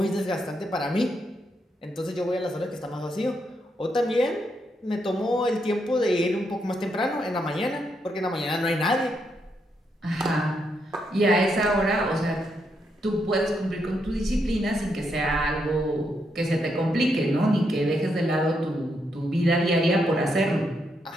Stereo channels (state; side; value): normal; both; correlation 0.79